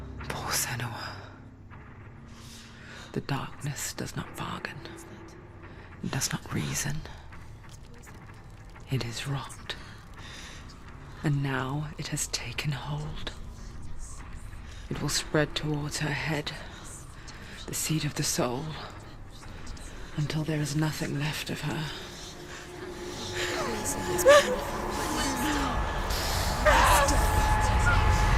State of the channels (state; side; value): identical; both; correlation 1.00